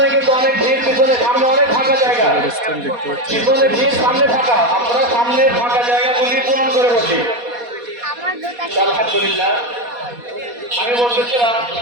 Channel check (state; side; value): late; left; 4.2 ms